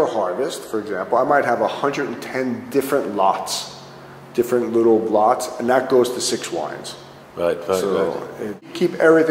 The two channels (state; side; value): identical; both; correlation 1.00